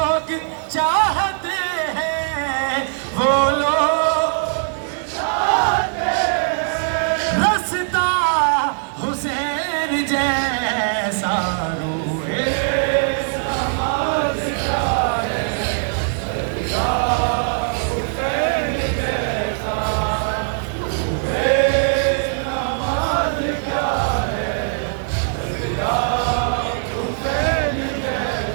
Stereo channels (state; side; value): silent; left; digital silence